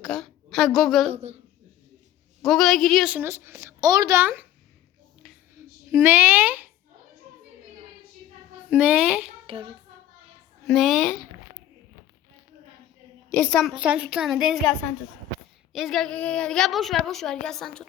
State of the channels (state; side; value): quieter; right; 12.3 dB